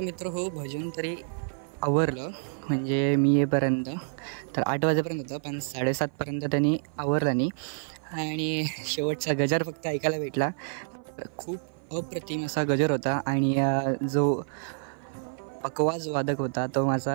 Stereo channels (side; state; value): left; silent; 55 dB below the other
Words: मित्र हो भजन तरी आवरलं, म्हणजे मी येईपर्यंत तर 8 वाजेपर्यंत होतं, पण 7:30पर्यंत त्यांनी आवरलं नाही. आणि शेवटचा गजर फक्त ऐकायला भेटला. खूप अप्रतिम असा गजर होता. आणि जो पकवाज वादक होता तो